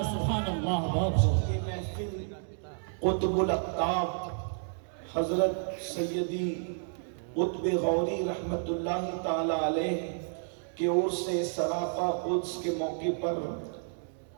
بہت یہ محفل قطب الاقطاب حضرت سیدی قطب غوری رحمت اللہ تعالی علیہ کی اور سے سراپا قدس کے موقع پر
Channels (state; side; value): silent; left; 57 dB below the other